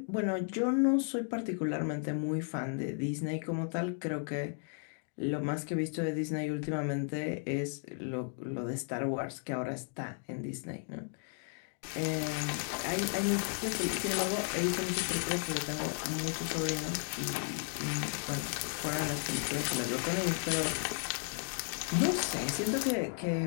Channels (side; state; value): right; silent; 55 dB below the other